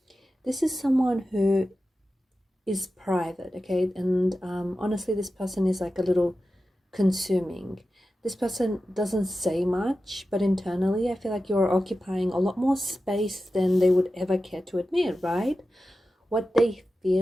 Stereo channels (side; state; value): both; normal; correlation 0.93